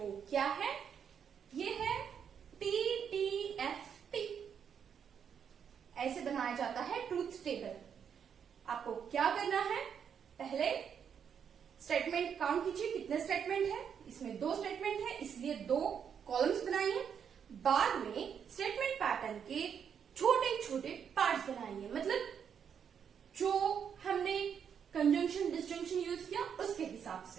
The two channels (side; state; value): left; quieter; 7.7 dB